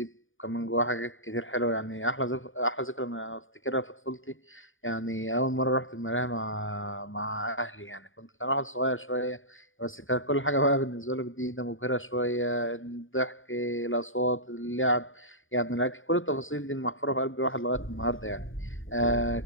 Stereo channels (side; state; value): right; late; 0.58 ms